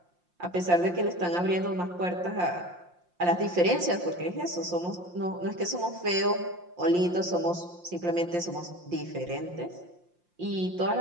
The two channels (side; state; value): left; late; 5.7 ms